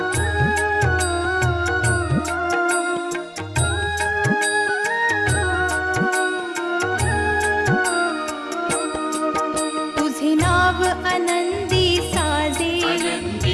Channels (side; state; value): both; identical; correlation 1.00